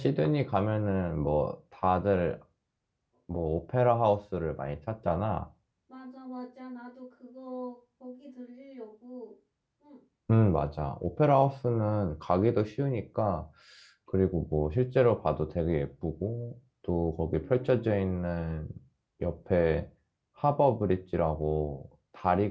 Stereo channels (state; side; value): identical; both; correlation 1.00